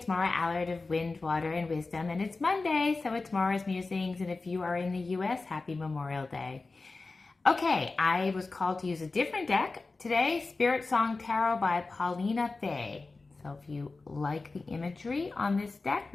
Maura Allard of Wind, Water, and Wisdom, and it's Monday, so it's Maura's Musings, and if you are in the U.S., happy Memorial Day. Okay, I was called to use a different deck today, Spirit Song Tarot by Paulina Fay. So if you like the imagery on this deck,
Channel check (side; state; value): right; quieter; 3.7 dB